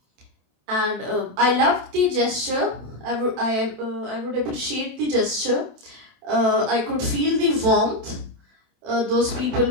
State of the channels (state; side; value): late; left; 27 ms